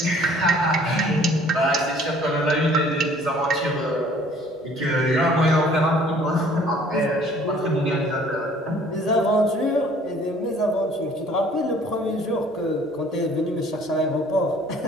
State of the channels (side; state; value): both; normal; correlation 0.55